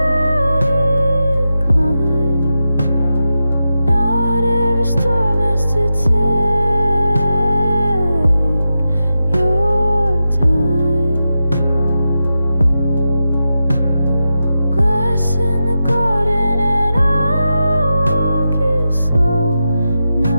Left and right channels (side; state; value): both; inverted; correlation -0.90